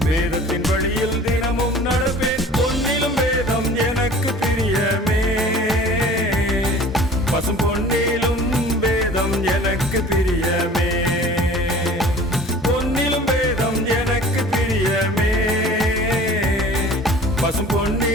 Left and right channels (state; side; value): normal; both; correlation 0.45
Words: வேதத்தின் வழியில் தினமும் நடப்பேன். பொன்னிலும் வேதம் எனக்கு பிரியமே, பசும் பொன்னிலும் வேதம் எனக்கு பிரியமே. பொன்னிலும் வேதம் எனக்கு பிரியமே, பசும்